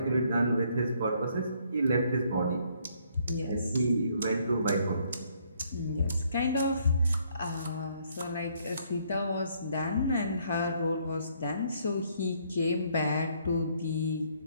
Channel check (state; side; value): inverted; both; correlation -0.68